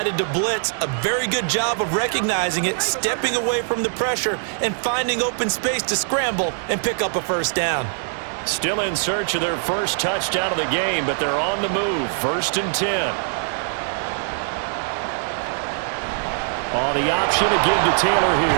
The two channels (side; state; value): left; silent; 64 dB below the other